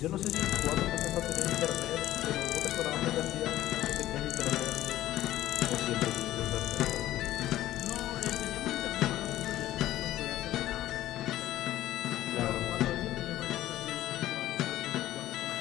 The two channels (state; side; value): quieter; right; 14.3 dB